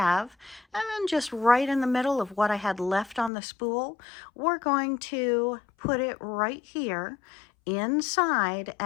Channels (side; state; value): right; drops out; at 3.3 s